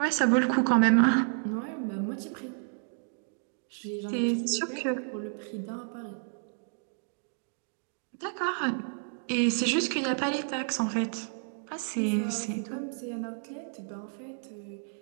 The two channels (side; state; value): left; silent; 57 dB below the other